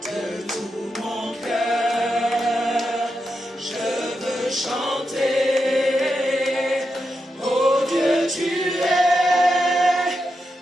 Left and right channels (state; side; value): normal; both; correlation 0.87